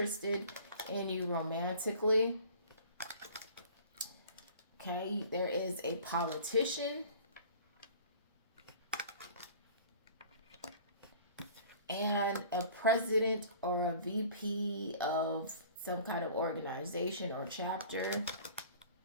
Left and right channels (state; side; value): inverted; both; correlation -0.47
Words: in you romantically. Okay, there is a politician and a president or a VP of some kind of organization or chapter.